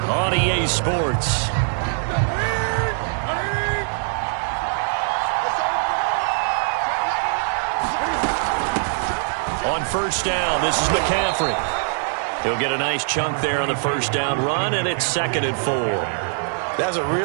EA Sports. On 1st down, this is McCaffrey. He'll get a nice chunk there on the 1st down run, and it's 2nd and 4. That's a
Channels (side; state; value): left; silent; 64 dB below the other